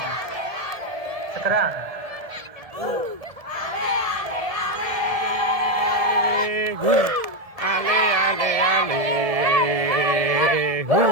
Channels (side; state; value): left; late; 1.7 ms